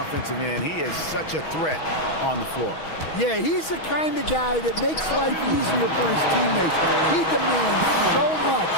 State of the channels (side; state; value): right; late; 6.2 ms